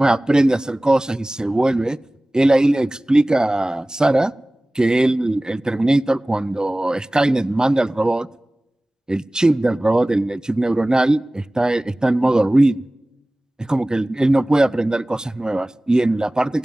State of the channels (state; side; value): normal; both; correlation 0.98